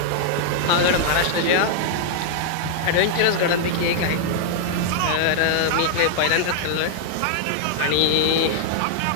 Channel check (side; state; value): both; different; correlation -0.01